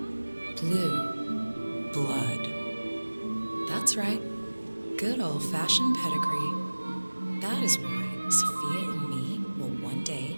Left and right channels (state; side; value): inverted; both; correlation -1.00